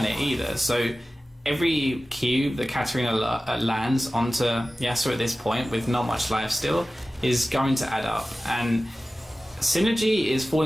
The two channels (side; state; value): both; normal; correlation 0.96